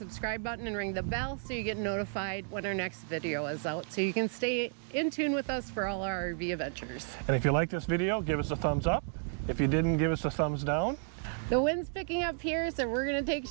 button and ring the bell so you get notified when our next video is out, so you can stay in tune with us for all our RV adventures. And if you like this video, give us a thumbs up. If you didn't, give us a thumbs down. The wind's picking up here, so we're gonna take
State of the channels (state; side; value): silent; left; 56 dB below the other